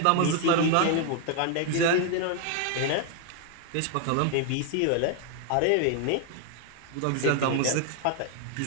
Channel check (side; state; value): both; different; correlation 0.00